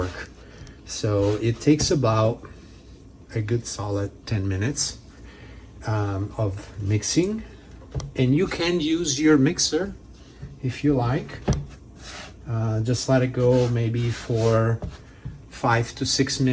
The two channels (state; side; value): identical; both; correlation 1.00